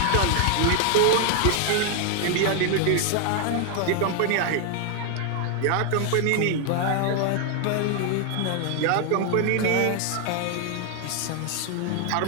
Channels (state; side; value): different; both; correlation 0.00